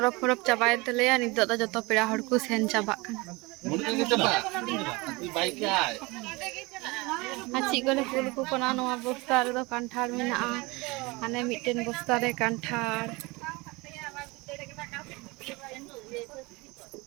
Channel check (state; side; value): quieter; left; 24.4 dB